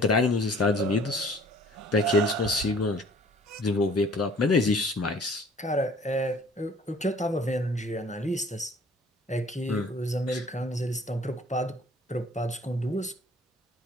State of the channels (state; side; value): normal; both; correlation 0.53